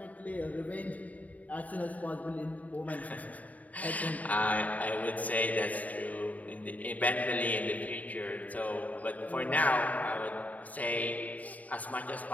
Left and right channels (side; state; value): right; late; 0.072 ms